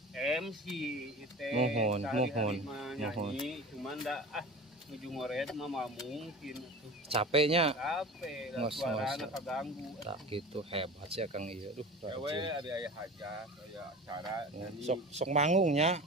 MC itu. Mohon. Nyanyi cuman da nuju ngored mah mungkin tuh. Capeknya. Capek, Ngos-ngos. suarana kaganggu. Tak gitu hebat sih Akang ieu. Duh, Ewe rajin. ada aya hajat, aya acara nyanyi. Sok manggungnya.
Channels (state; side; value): normal; both; correlation 0.35